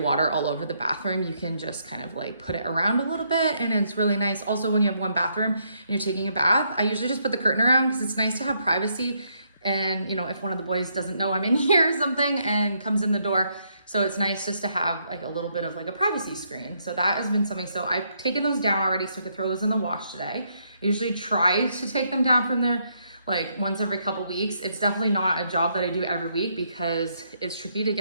all over the bathroom. You can just kind of like put it around a little bit, and it's really nice. Also, when you have one bathroom and you're taking a bath, I usually just put the curtain around because it's nice to have privacy. And you know, if one of the boys doesn't know I'm in here or something and comes in the door, so it's nice just to have like a little bit of like a privacy screen. So that has been something. So I've taken those down already so I could throw those in the wash today. I usually try to take them down from there like once every couple weeks. It's definitely not a job that I do every week because it's tricky to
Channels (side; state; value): both; inverted; correlation -0.75